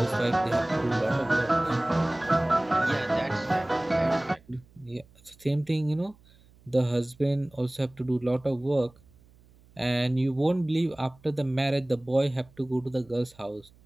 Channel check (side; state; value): right; noise; hum, 28 dB below the sound